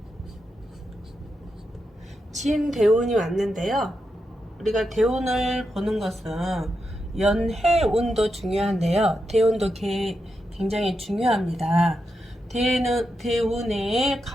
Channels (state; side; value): normal; both; correlation 0.86